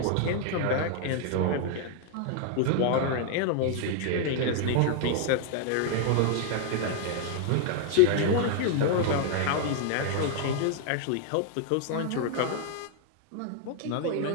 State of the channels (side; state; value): both; different; correlation 0.00